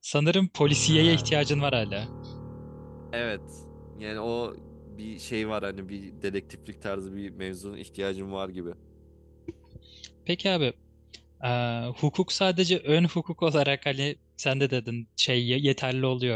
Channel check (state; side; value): identical; both; correlation 1.00